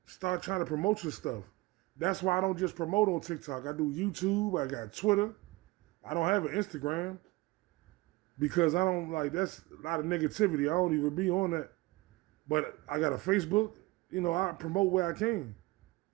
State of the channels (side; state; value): left; quieter; 21.2 dB